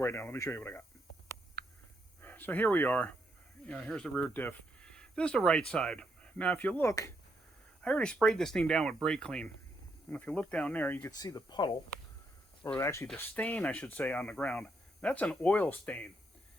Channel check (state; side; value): normal; both; correlation 0.77